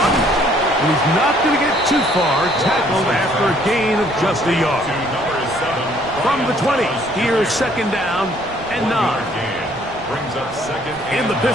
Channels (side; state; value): right; noise; rumble, 20 dB below the sound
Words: And he's not going to get too far. Tackled after a gain of just a yard. From the 20, here's 2nd down and 9. In the